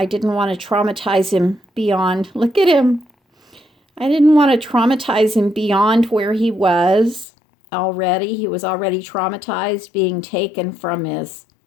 didn't want to traumatize him beyond, look at him. I didn't want to traumatize him beyond where he was already. He was already traumatized, being taken from his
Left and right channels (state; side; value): drops out; right; at 7.2 s